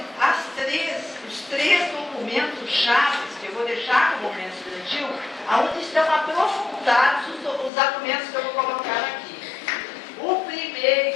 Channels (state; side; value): drops out; right; at 7.7 s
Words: os três documentos chaves que eu vou deixar no movimento estudantil, onde estão aprofundados os argumentos que eu vou colocar aqui. O